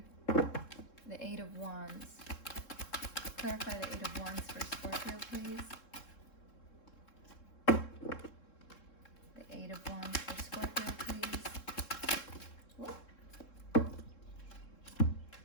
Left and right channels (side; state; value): right; late; 3.7 ms